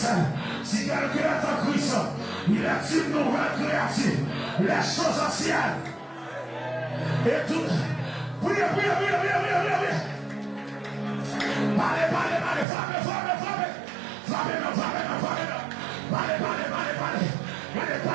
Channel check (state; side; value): drops out; left; at 12.7 s